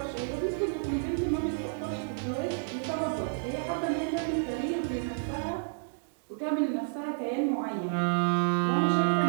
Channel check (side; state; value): left; silent; digital silence